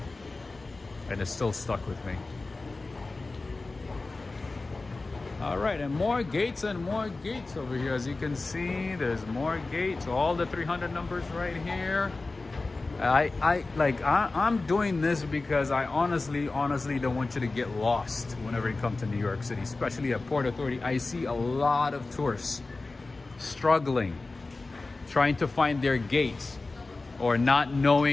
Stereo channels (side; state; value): right; quieter; 3.4 dB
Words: And it's still stuck with me. All right, and more gates over here. As you can see, there's more gates. All the 300 numbers right here. I'm doing this because I honestly don't want you to get lost whenever you come to New York City, especially at Port Authority. I see a lot of tourists struggling, trying to find their gates, or not